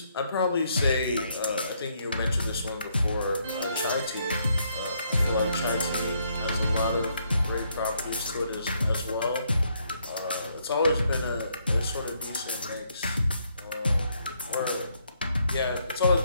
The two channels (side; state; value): both; inverted; correlation -0.73